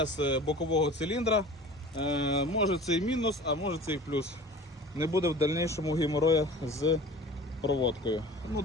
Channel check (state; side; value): normal; both; correlation 0.41